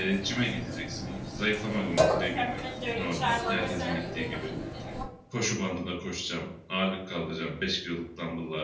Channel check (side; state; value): both; identical; correlation 1.00